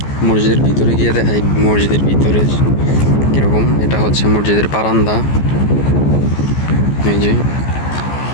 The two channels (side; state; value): right; late; 14 ms